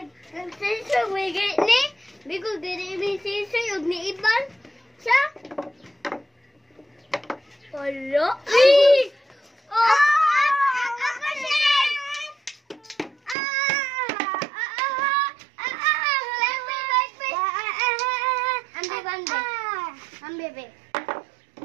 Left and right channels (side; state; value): left; drops out; at 13.4 s